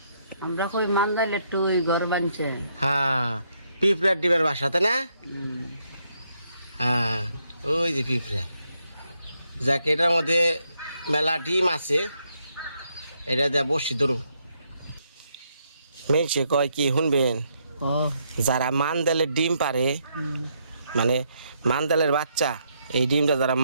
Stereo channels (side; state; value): both; inverted; correlation -0.76